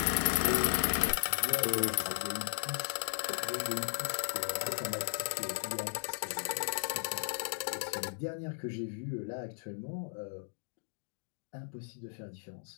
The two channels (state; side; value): silent; right; digital silence